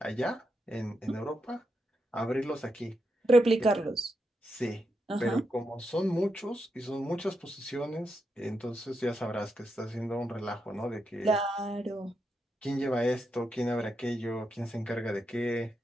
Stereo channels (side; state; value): both; normal; correlation 0.84